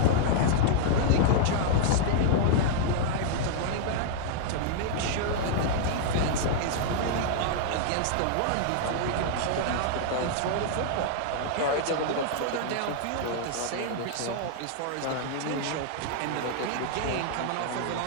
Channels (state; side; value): different; both; correlation -0.01